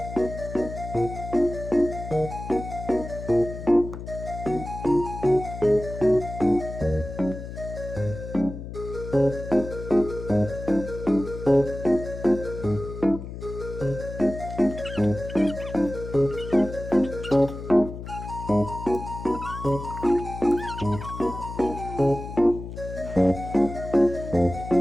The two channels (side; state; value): left; noise; hum, 10 dB below the sound